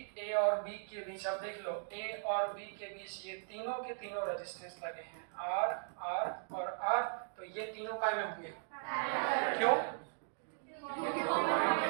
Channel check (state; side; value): silent; left; digital silence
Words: ए और बी के बीच, अब देख लो, ए और बी के बीच ये तीनों के तीनों रेजिस्टेंस लगे हैं, आर, आर और आर। तो ये तीनों काय में होंगे? क्यों?